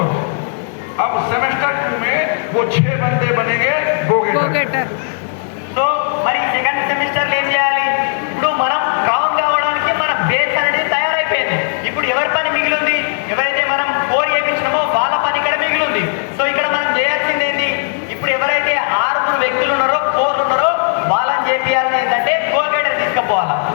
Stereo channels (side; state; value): right; silent; digital silence